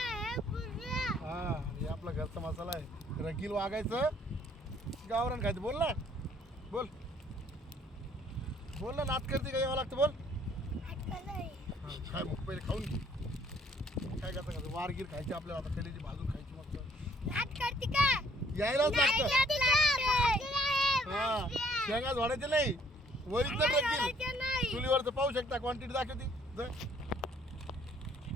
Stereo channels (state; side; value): normal; both; correlation 0.62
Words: हां हे आपला घरचा मसाला आहे. रगील वागायचं गावरान खायचं बोल ना बोल बोल ना नात करते का यावं लागतं बोल. हां काय मग पहिले खाऊन घे काय करता का वारगीर खायची आपल्याला आता कलेची भाजून खायची मस्त यायलाच लागतं. हां शेंगा झोडायचे नाही ओरिजिनल रगील चुलीवरचं पाहू शकता क्वांटिटी दाखवती